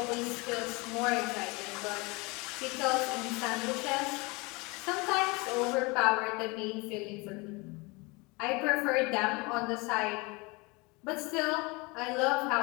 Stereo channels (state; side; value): quieter; right; 26.5 dB